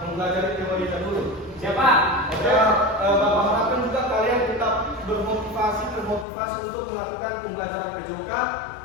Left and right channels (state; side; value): drops out; right; at 6.2 s